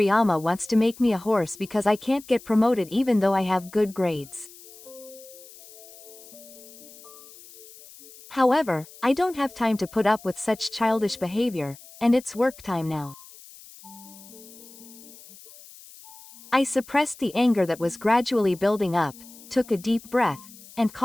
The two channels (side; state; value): left; noise; hiss, 20 dB below the sound